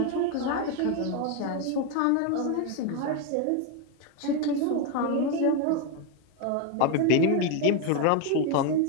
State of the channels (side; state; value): both; different; correlation 0.02